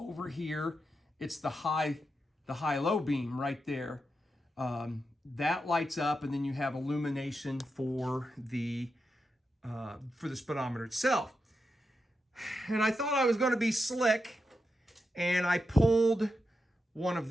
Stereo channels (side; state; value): both; normal; correlation 0.87